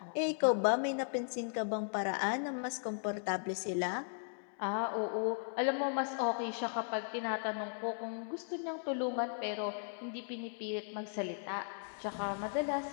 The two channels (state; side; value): silent; right; digital silence